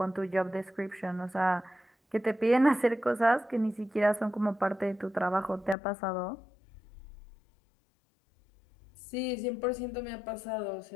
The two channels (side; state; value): right; drops out; at 5.8 s